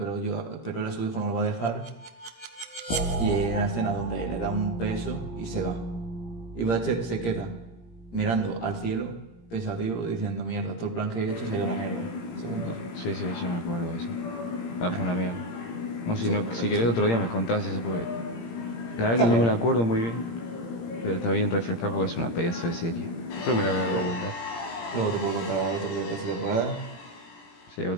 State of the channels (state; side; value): late; right; 17 ms